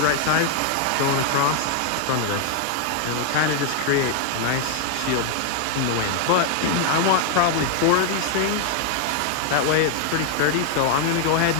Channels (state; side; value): different; both; correlation 0.00